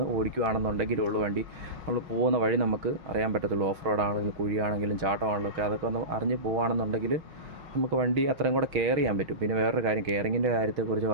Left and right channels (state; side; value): late; left; 6.3 ms